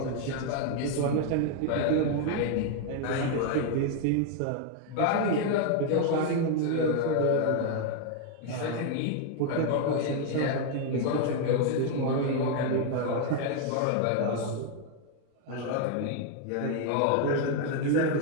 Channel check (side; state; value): both; different; correlation 0.00